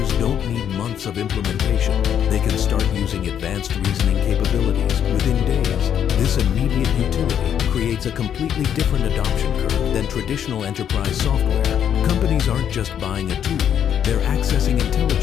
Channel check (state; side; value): quieter; right; 9.1 dB